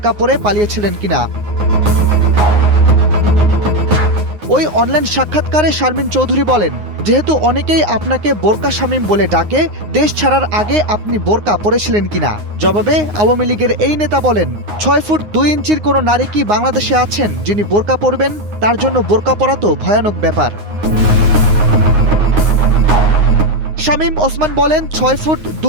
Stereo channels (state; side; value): late; left; 9.6 ms